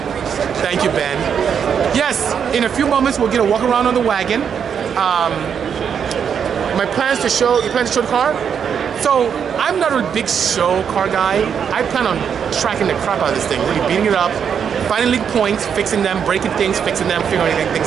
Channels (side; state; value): left; quieter; 7.5 dB